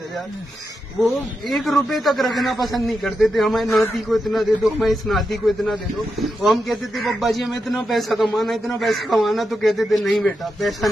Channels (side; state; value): both; normal; correlation 0.87